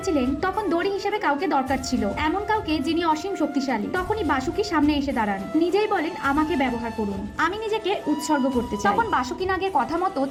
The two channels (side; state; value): both; identical; correlation 1.00